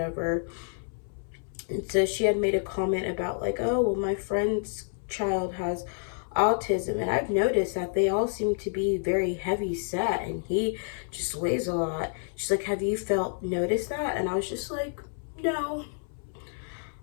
And so she had made a comment about like, oh, well, my friend's child has autism, and I've noticed that they all seem to be very heavy set, and he just weighs a lot. She's like, have you noticed that? And I was just like, no.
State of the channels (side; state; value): right; silent; 57 dB below the other